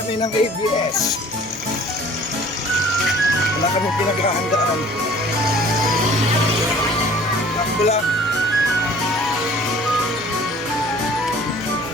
ng ABS. Wala kami pinaghahandaan. Takbo lang.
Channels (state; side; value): normal; both; correlation 0.50